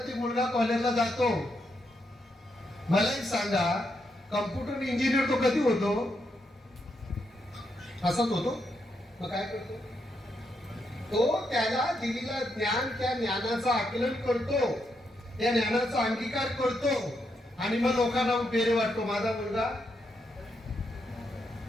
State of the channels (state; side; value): normal; both; correlation 0.80